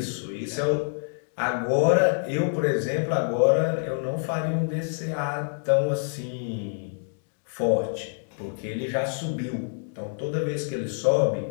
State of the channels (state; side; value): silent; right; 60 dB below the other